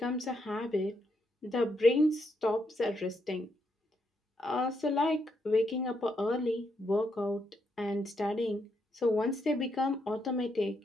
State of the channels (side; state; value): both; normal; correlation 0.78